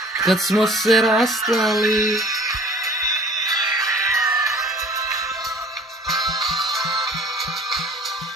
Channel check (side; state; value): both; normal; correlation 0.49